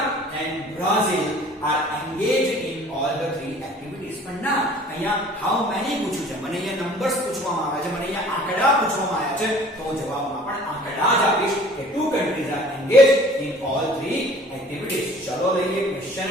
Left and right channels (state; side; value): normal; both; correlation 0.50